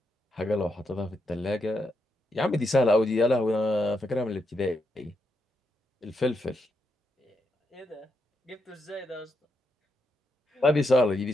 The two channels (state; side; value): normal; both; correlation 0.82